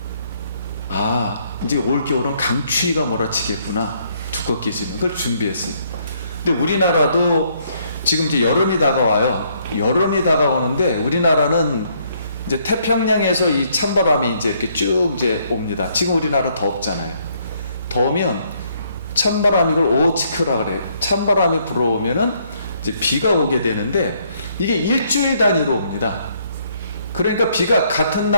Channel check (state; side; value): inverted; both; correlation -0.69